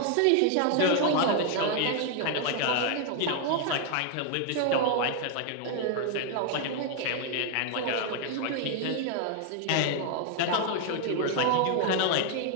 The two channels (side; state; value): both; different; correlation 0.00